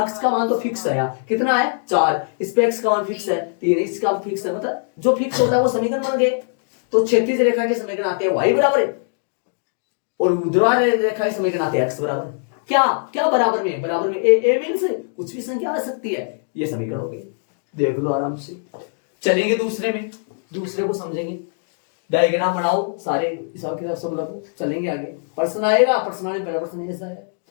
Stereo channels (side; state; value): right; silent; digital silence